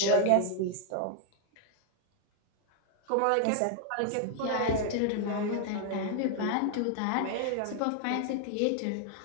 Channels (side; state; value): both; different; correlation 0.00